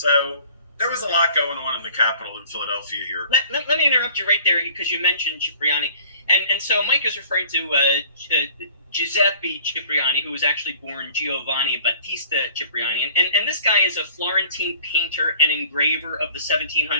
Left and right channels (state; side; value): inverted; both; correlation -0.49